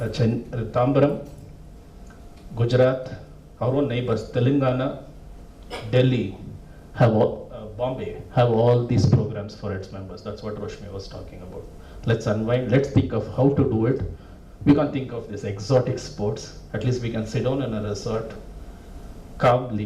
Tambaram, Gujarat, our own neighbors, Telangana, Delhi, Bombay, have all these programs for its members. That's what Roshmi was talking about. Let's unwind, let's think of how to do it. We can't think of these exotic sports. At least we can sit down in a resort,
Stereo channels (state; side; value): identical; both; correlation 1.00